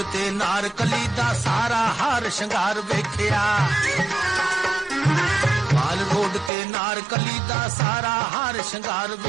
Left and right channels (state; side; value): drops out; left; at 6.5 s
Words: ते नारकली दा सारा हार शंगार वेखिया, माल रोड ते नारकली दा सारा हार शंगार